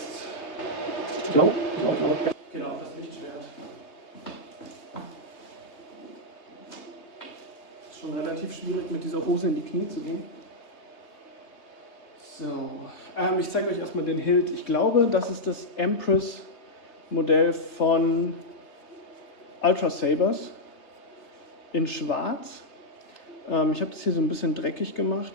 Genau, das Lichtschwert. Ist schon relativ schwierig, mit dieser Hose in die Knie zu gehen. So, ich zeige euch erstmal den Hilt. Ich glaube, das ist das Empress-Modell von Ultra Sabers in Schwarz. Ich habe das hier so ein bisschen dreckig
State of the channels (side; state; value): right; late; 3.3 ms